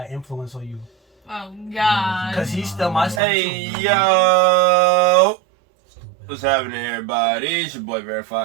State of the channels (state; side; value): drops out; left; at 3.2 s